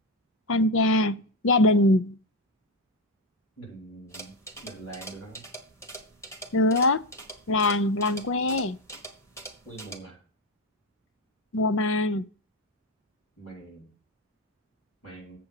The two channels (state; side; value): normal; both; correlation 0.12